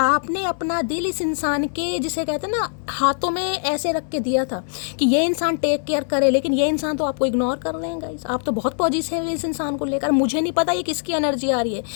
अपना दिल इस इंसान के, जिसे कहते हैं ना, हाथों में ऐसे रख के दिया था कि ये इंसान टेक केयर करे, लेकिन ये इंसान तो आपको इग्नोर कर रहे हैं गाइस। आप तो बहुत पॉजिटिव है इस इंसान को लेकर। मुझे नहीं पता ये किसकी एनर्जी आ रही है,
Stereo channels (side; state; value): right; silent; digital silence